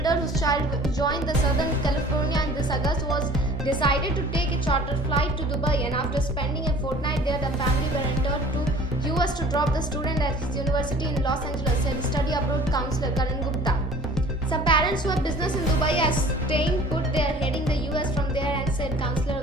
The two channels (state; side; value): normal; both; correlation 0.48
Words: whose child joined the Southern California in this August was decided to take a charter flight to Dubai, and after spending a fortnight there, the family were entered to US to drop the student at his university in Los Angeles, said study abroad counselor Karan Gupta. Some parents who have business in Dubai are staying put there, heading the US from there, and said counselor